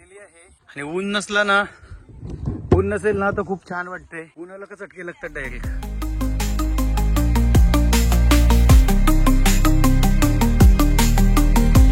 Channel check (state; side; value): identical; both; correlation 1.00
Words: आहे. आणि ऊन नसला ना, ऊन नसेल ना तर खूप छान वाटतंय. उन्हाला का चटके लागतात डायरेक्ट.